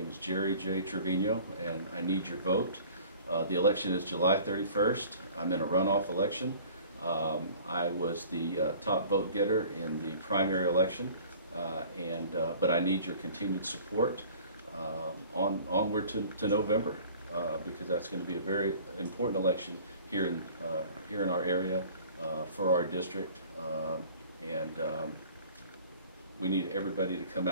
is Jerry J. Trevino, and I need your vote. The election is July 31st. I'm in a runoff election. I was the top vote getter in the primary election, but I need your continued support onward to November, because that's going to be a very important election here in our area for our district, and we need everybody to come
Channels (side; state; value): both; inverted; correlation -0.48